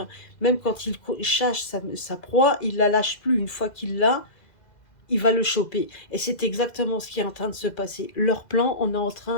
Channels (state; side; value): late; right; 2.0 ms